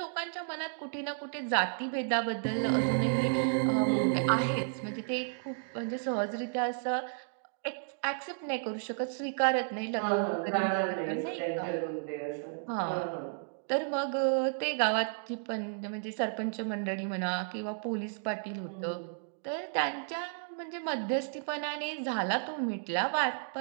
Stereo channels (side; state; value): left; silent; digital silence